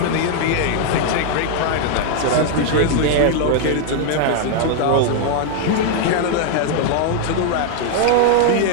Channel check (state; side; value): different; both; correlation 0.00